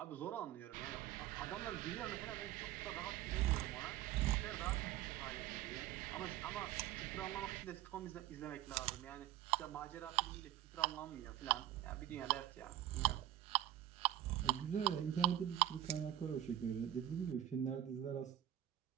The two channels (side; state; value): left; quieter; 12.5 dB